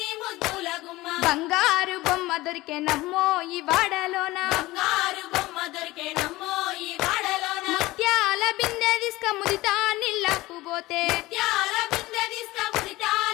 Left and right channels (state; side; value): quieter; right; 19.0 dB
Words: ముద్దుల గుమ్మ బంగారు బొమ్మ దొరికెనమ్మో ఈ వాడలోన బంగారు బొమ్మ దొరికేనమ్మో ఈ వాడలోన ముత్యాల బిందె తీసుక ముదితా నీళ్ళకు పోతే త్యాల బిందె తీసుకుముడితా